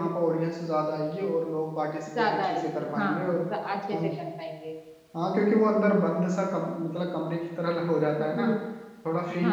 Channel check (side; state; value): both; identical; correlation 1.00